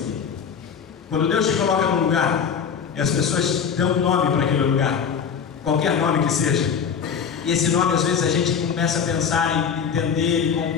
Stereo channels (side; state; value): right; quieter; 6.9 dB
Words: Quando Deus te coloca num lugar, e as pessoas dão um nome para aquele lugar, qualquer nome que seja, e esse nome às vezes a gente começa a pensar em entender, com